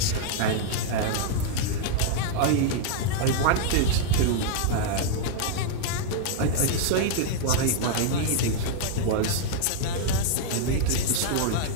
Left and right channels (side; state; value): both; different; correlation -0.01